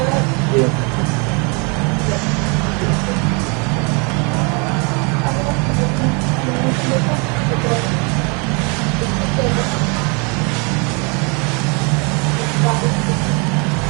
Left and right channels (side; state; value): left; quieter; 32.5 dB